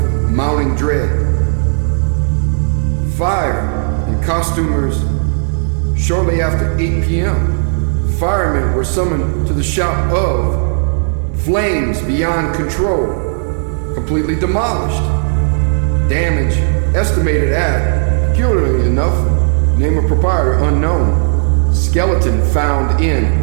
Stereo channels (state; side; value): silent; left; 71 dB below the other